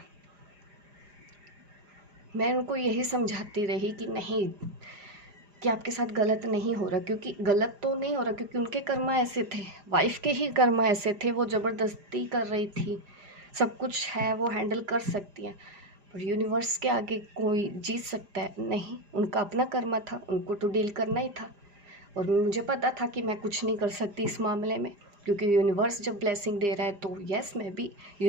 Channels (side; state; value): left; late; 5.0 ms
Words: मैं उनको यही समझाती रही कि नहीं, कि आपके साथ गलत नहीं हो रहा, क्योंकि गलत तो नहीं हो रहा, क्योंकि उनके कर्मा ऐसे थे, वाइफ के ही कर्मा ऐसे थे, वो ज़बरदस्ती कर रही थी। सब कुछ है, वो हैंडल कर सकती हैं, पर यूनिवर्स के आगे कोई जीत सकता है नहीं। उनका अपना कर्मा था, उनको तो डील करना ही था, और मुझे पता था कि मैं कुछ नहीं कर सकती इस मामले में, क्योंकि यूनिवर्स जब ब्लेसिंग दे रहा है तो यस, मैं भी